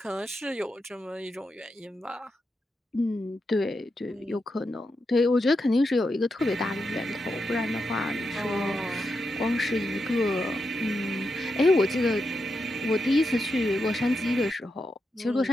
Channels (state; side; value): normal; both; correlation 0.86